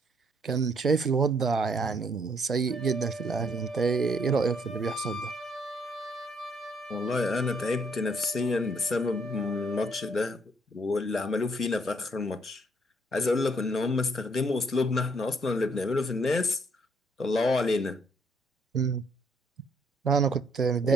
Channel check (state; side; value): normal; both; correlation 0.68